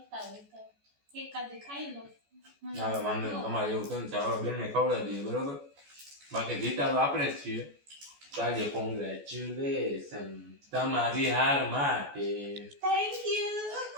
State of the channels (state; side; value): late; left; 14 ms